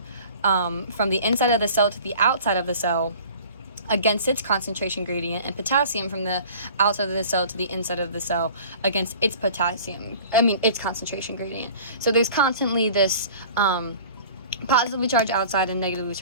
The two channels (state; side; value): inverted; both; correlation -0.45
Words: from the inside of the cell to the outside of the cell against its concentration gradient, and potassium from the outside of the cell to the inside of the cell against its its concentration gradient. So there's constantly this positively charged outside and negatively